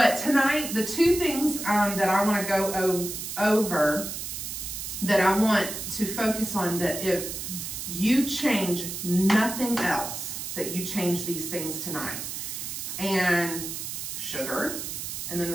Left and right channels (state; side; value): noise; right; hiss, 6 dB below the sound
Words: tonight, the 2 things that I want to go over, that I want to focus on, that if you change nothing else, that you change these things tonight. And sugar. And then